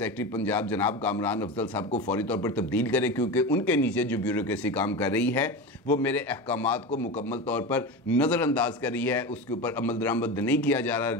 पंजाब जनाब कामरान अफजल साहब को फौरी तौर पर तब्दील करें, क्योंकि उनके नीचे जो ब्यूरोक्रेसी काम कर रही है वो मेरे अहकामात को मुकम्मल तौर पर नज़रअंदाज कर रही है, उसके ऊपर अमल दरामद नहीं किया जा रहा।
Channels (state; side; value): normal; both; correlation 0.24